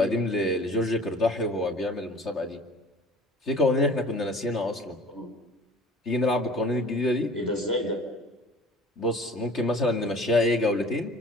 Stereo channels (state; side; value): normal; both; correlation 0.46